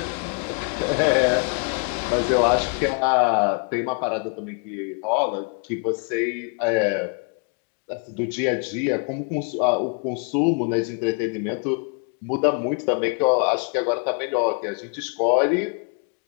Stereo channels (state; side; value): quieter; right; 38.3 dB